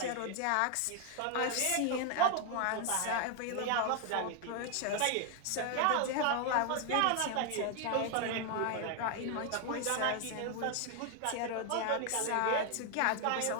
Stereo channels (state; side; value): different; both; correlation 0.00